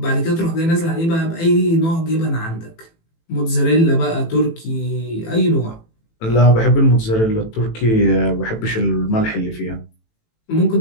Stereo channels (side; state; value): right; late; 18 ms